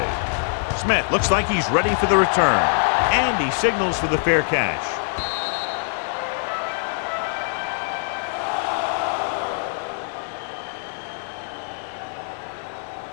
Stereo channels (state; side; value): silent; right; digital silence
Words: Smith looks like he's ready for the return. And he signals for the fair catch.